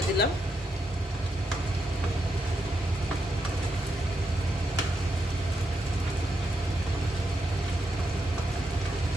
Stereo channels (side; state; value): both; normal; correlation 0.82